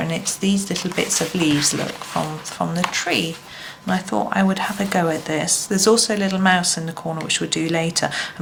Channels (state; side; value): identical; both; correlation 1.00